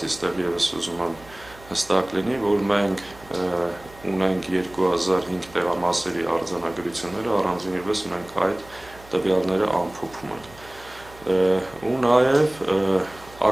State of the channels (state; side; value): noise; right; hum, 22 dB below the sound